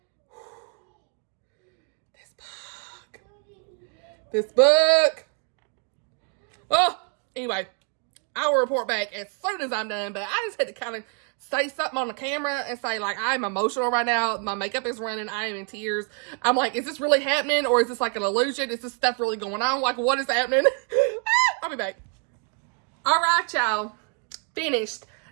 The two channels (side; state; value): left; quieter; 38.7 dB